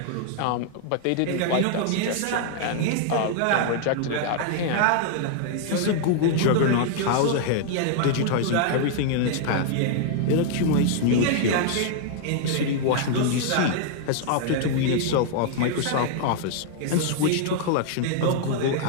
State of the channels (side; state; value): both; different; correlation -0.01